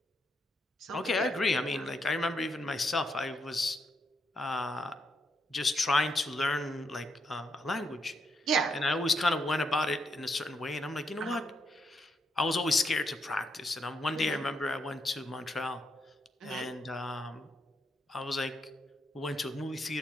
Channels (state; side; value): normal; both; correlation 0.79